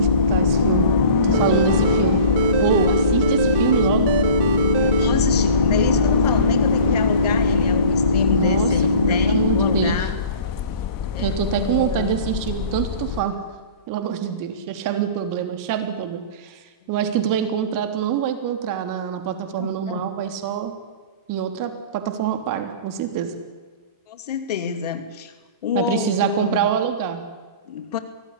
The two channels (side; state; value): both; inverted; correlation -0.41